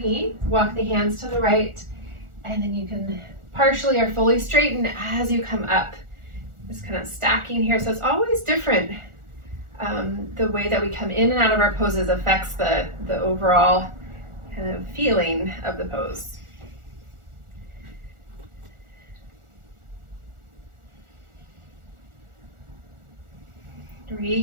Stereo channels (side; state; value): left; late; 1.4 ms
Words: walk the hands to the right, and then you can partially or fully straighten as you come up. Just kind of stacking here. So it's always different. The way that we come in and out of our poses affects the overall kind of feeling of the pose.